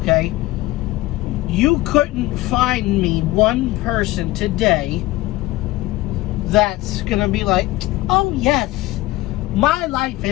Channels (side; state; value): right; quieter; 18.2 dB